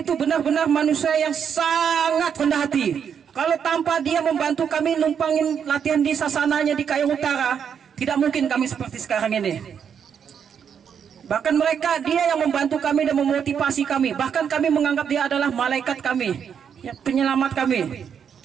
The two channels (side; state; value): left; quieter; 7.6 dB